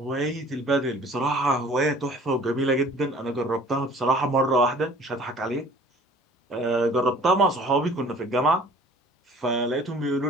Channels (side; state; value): both; normal; correlation 0.50